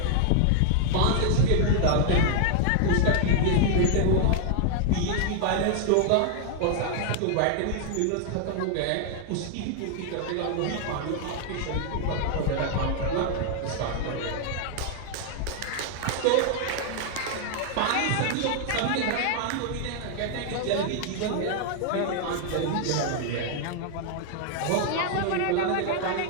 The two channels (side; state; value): both; different; correlation 0.00